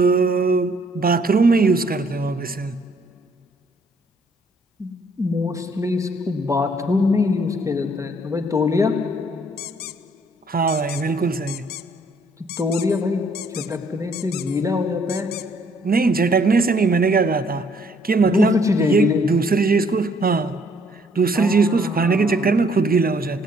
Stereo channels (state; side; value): normal; both; correlation 0.64